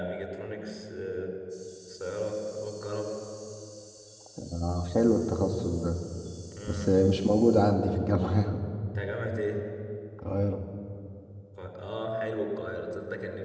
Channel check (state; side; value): identical; both; correlation 1.00